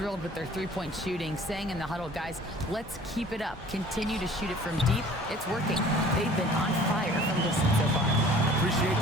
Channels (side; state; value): both; normal; correlation 0.50